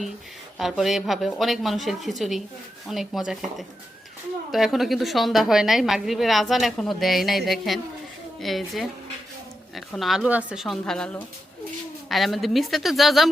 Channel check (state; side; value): normal; both; correlation 0.87